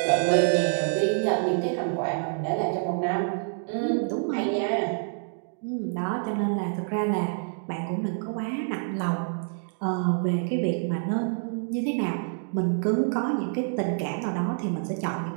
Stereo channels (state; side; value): silent; left; digital silence